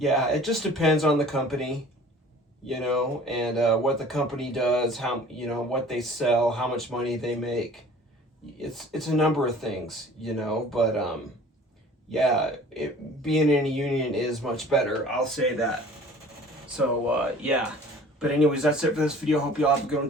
it just depends on the company, you know, and what the company does, how, you know, what they sell, how much money they make. It's a number of things, you know, but yeah, being in a union is much better, I'll say that. So yeah, but anyways, that's it for this video. Hope you all have a good one.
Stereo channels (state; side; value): normal; both; correlation 0.47